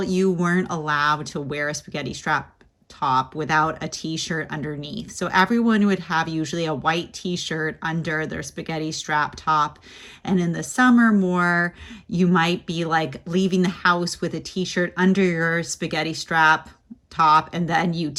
you weren't allowed to wear a spaghetti strap top without a t-shirt underneath. So everyone would have usually a white t-shirt under their spaghetti strap top. And in the summer more, you might be like leaving the house with a t-shirt under your spaghetti strap top and then you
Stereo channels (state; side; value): identical; both; correlation 1.00